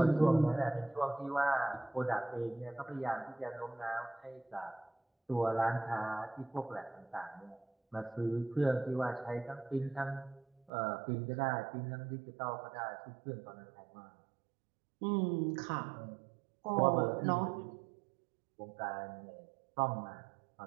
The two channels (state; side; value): drops out; left; at 10.7 s